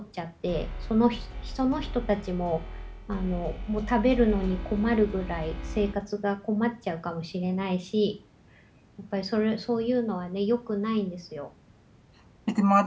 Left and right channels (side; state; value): both; identical; correlation 1.00